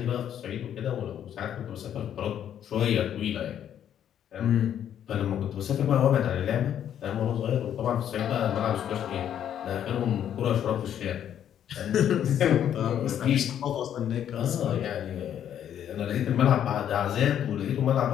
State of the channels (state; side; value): quieter; right; 9.9 dB